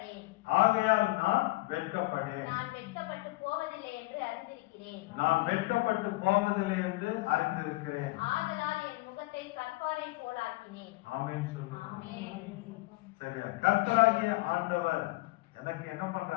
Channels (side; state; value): right; quieter; 21.7 dB